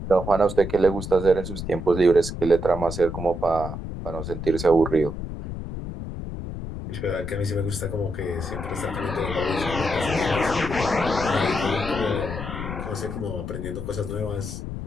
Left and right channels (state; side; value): noise; left; rumble, 7 dB below the sound